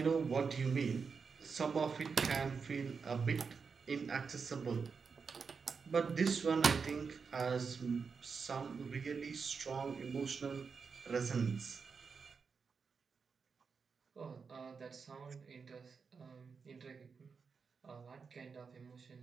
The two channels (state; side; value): quieter; left; 5.4 dB